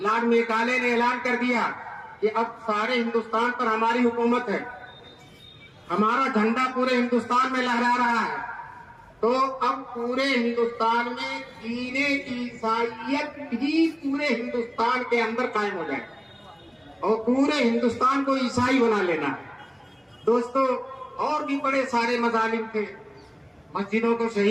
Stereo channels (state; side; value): identical; both; correlation 1.00